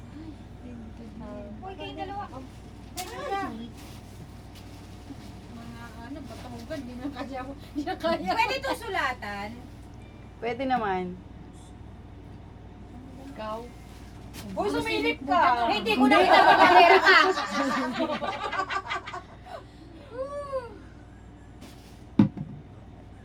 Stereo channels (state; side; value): identical; both; correlation 1.00